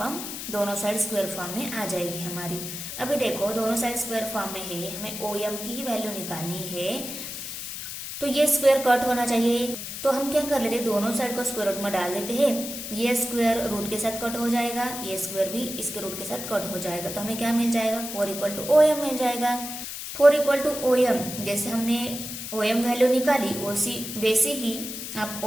दोनों साइड स्क्वायर फॉर्म में आ जाएगी हमारी। अभी देखो दोनों साइड स्क्वायर फॉर्म में है, हमें ओ एम की ही वैल्यू निकालनी है। तो ये स्क्वायर कट होना चाहिए, तो हम क्या कर लेते हैं, दोनों साइड को स्क्वायर रूट में डाल देते हैं। ये स्क्वायर रूट के साथ कट हो जाएगा, ये स्क्वायर भी इसके रूट के साथ कट हो जाएगा। तो हमें क्या मिल जाएगा, 4 इक्वल टू ओ एम मिल जाएगा। 4 इक्वल टू ओ एम, जैसे हमने ओ एम वैल्यू निकाली वैसे ही आप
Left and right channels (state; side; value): noise; left; hiss, 7 dB below the sound